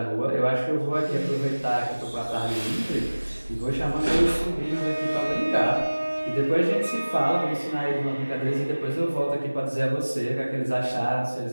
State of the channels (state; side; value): inverted; both; correlation -1.00